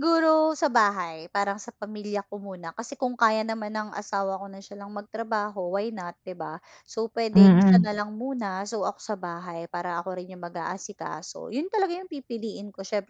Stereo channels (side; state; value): both; identical; correlation 1.00